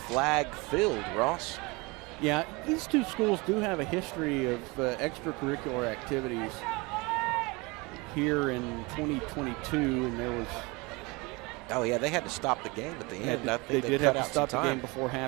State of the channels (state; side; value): quieter; left; 25.9 dB